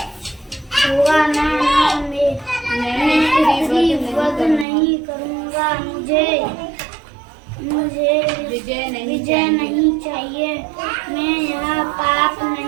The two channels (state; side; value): drops out; left; at 4.7 s